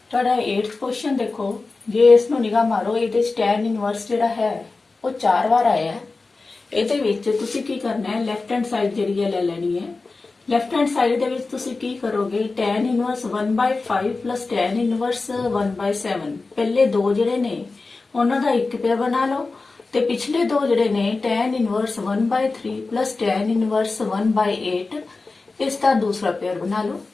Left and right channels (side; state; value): right; quieter; 3.7 dB